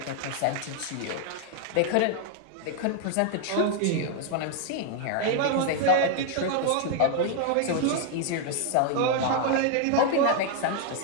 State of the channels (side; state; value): both; different; correlation 0.00